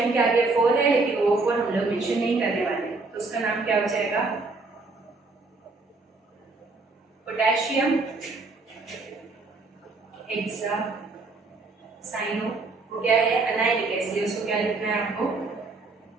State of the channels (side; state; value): left; quieter; 3.6 dB